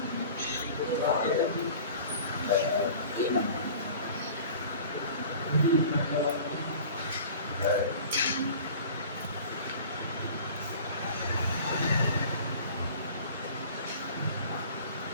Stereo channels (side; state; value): both; inverted; correlation -0.43